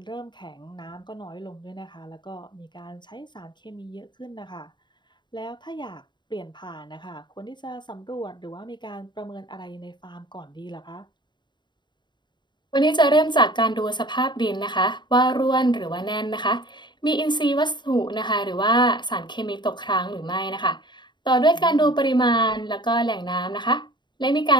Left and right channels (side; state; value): right; late; 0.22 ms